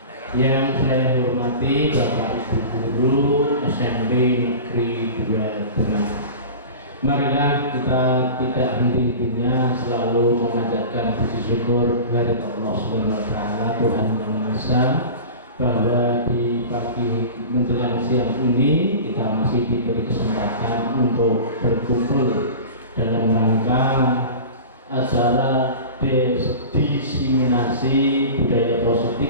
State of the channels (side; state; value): both; inverted; correlation -0.34